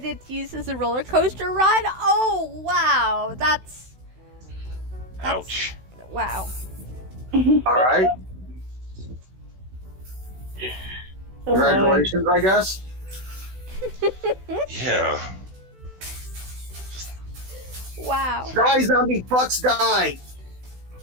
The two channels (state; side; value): late; left; 16 ms